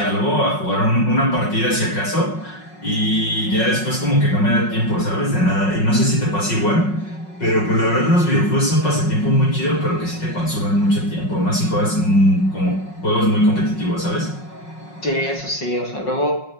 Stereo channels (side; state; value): right; late; 5.5 ms